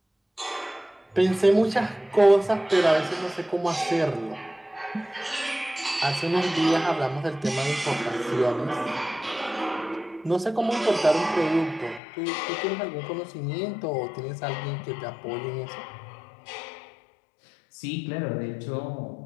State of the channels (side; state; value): right; drops out; at 12.0 s